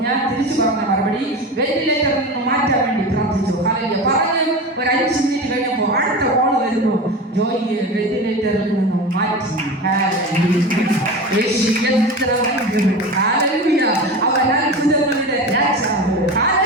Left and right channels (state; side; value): normal; both; correlation 0.28